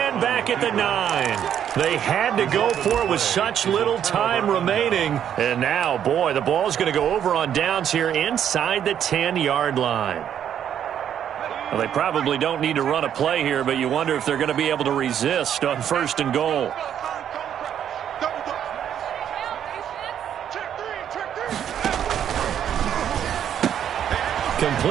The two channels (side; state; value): left; quieter; 9.5 dB